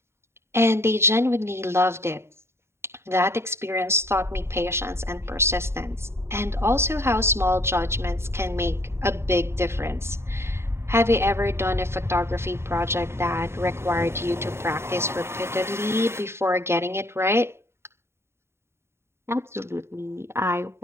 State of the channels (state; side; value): late; left; 0.12 ms